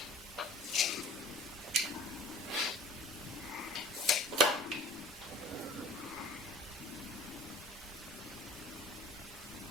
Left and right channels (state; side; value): normal; both; correlation 0.46